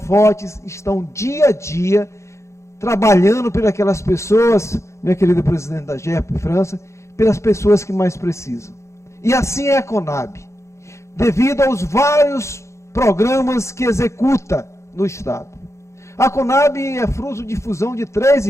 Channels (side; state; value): right; late; 0.14 ms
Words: estão dia a dia trabalhando por aquelas pessoas, minha querida presidente da GERP França, pelas pessoas que mais precisam. E assim é a CONAB, devido aos vários programas que executa no Estado. A CONAB é fruto de fusão de 3